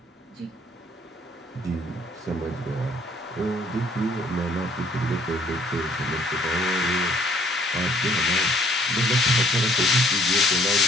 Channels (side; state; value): both; normal; correlation 0.61